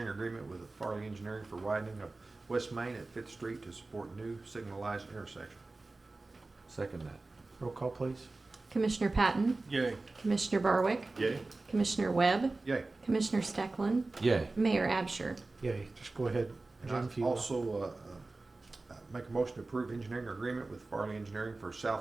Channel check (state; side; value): quieter; left; 3.3 dB